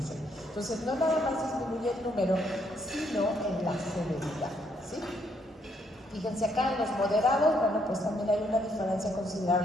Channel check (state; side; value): normal; both; correlation 0.72